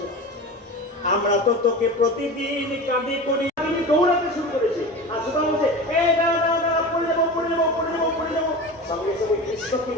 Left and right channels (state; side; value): normal; both; correlation 0.31